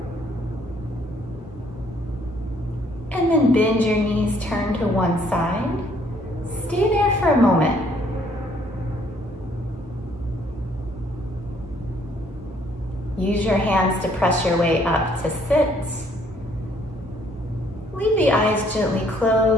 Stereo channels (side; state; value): both; normal; correlation 0.64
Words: And then bend your knees, turn to one side. Stay there for a moment. Use your hands to press your way up to sit. Leave the eyes gently